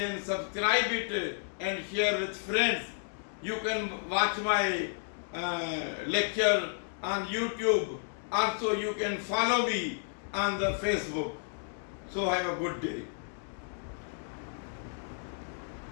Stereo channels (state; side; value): silent; right; digital silence